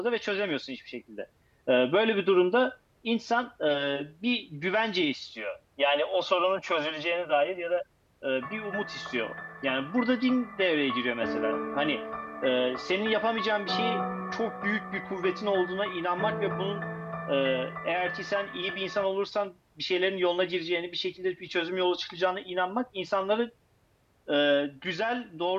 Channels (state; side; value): identical; both; correlation 1.00